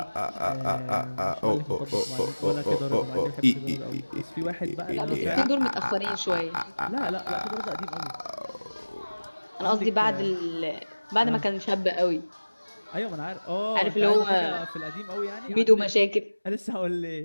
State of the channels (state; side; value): inverted; both; correlation -1.00